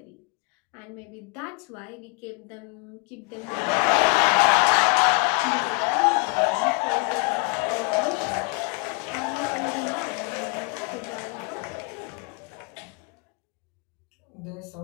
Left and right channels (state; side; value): quieter; right; 33.0 dB